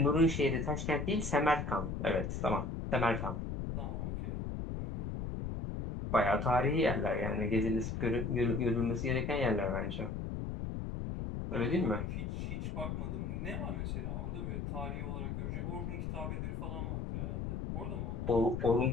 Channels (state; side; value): noise; left; rumble, 4 dB below the sound